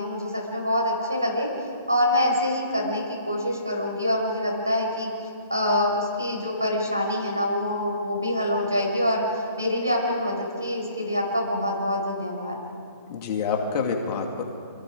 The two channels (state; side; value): inverted; both; correlation -0.57